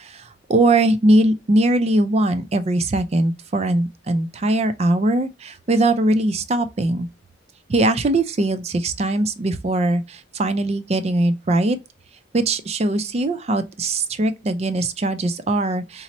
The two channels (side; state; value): both; normal; correlation 0.67